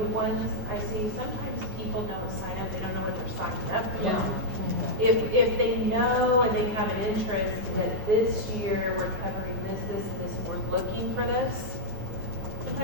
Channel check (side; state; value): left; late; 9.4 ms